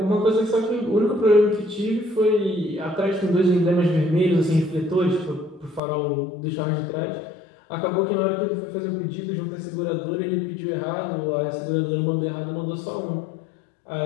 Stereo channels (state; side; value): drops out; right; at 5.8 s